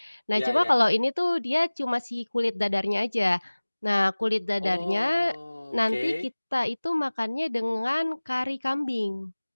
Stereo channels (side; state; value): both; inverted; correlation -1.00